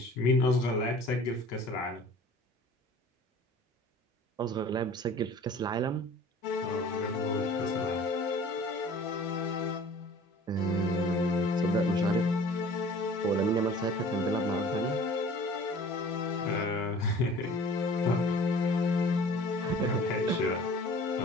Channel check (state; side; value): normal; both; correlation 0.47